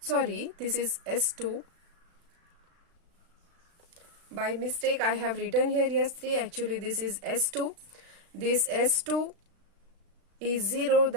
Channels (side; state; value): left; late; 36 ms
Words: is S2. By mistake I have written here S3, actually this is S2. This S2 is 0,